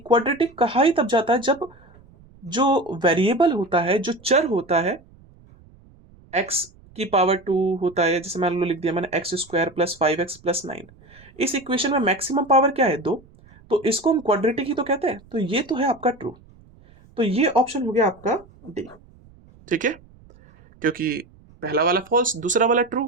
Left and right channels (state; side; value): noise; right; rumble, 26 dB below the sound